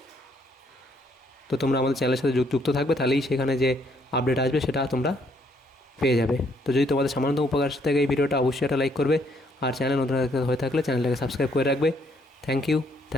তো তোমরা আমাদের চ্যানেলের সাথে যুক্ত থাকবে, তাহলেই সেখানে যে আপডেট আসবে সেটা তোমরা পেয়ে যাবে। তো যদি তোমাদের সামান্য উপকার থাকে এই ভিডিওটা, অবশ্যই একটা লাইক করবে। আর চ্যানেল নতুন হয়ে থাকলে চ্যানেলটাকে সাবস্ক্রাইব করে রাখবে। Thank you,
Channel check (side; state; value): both; normal; correlation 0.69